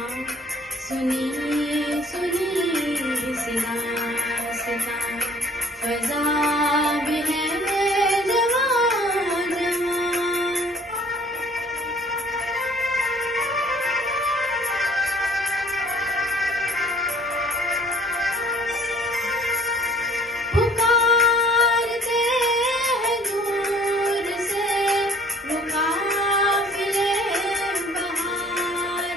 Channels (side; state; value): both; normal; correlation 0.55